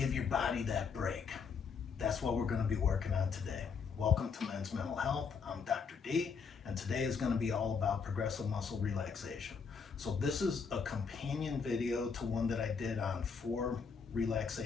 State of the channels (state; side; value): quieter; right; 5.7 dB